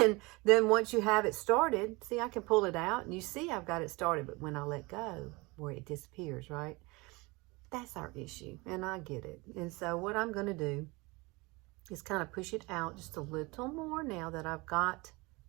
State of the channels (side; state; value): left; quieter; 24.8 dB